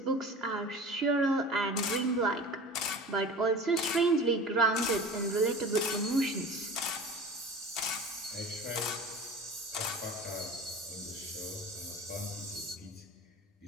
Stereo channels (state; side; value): normal; both; correlation 0.37